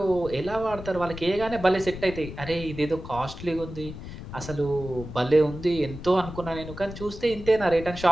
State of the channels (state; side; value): noise; left; rumble, 11 dB below the sound